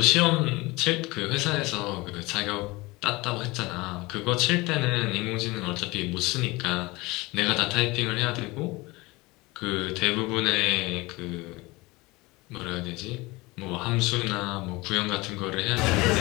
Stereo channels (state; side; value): quieter; right; 22.7 dB